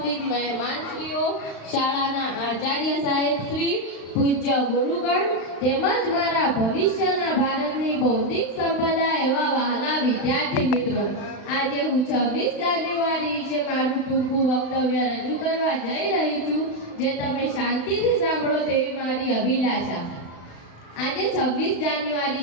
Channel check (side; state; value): right; late; 35 ms